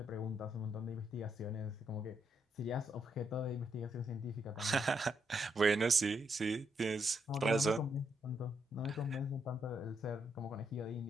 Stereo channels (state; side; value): normal; both; correlation 0.78